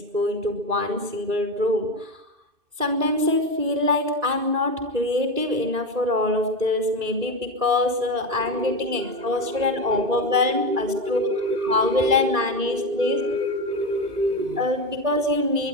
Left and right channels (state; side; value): late; left; 2.5 ms